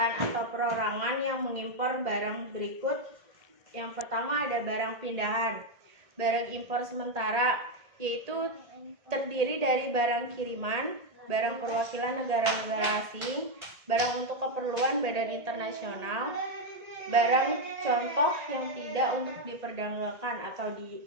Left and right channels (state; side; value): late; left; 1.8 ms